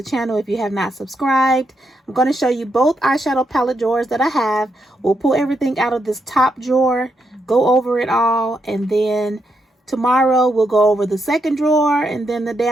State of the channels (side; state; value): both; normal; correlation 0.81